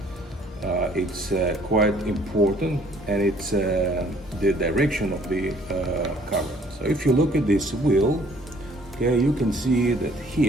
it's quite important, and it's the direction of the cover. So if you look at this wheel, okay, you can see that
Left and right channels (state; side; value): normal; both; correlation 0.59